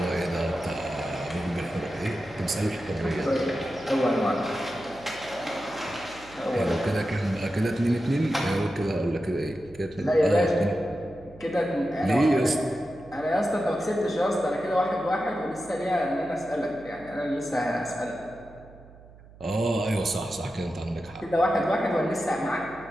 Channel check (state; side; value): noise; right; hum, 22 dB below the sound